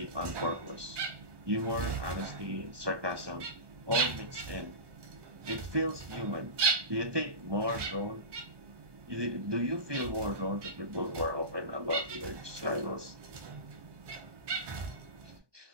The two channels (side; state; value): left; late; 1.2 ms